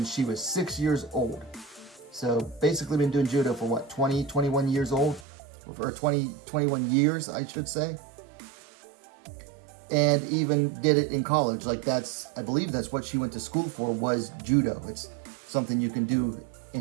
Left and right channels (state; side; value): drops out; left; at 5.2 s